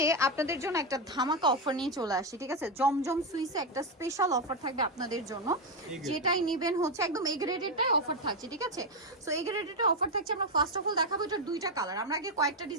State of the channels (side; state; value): both; normal; correlation 0.06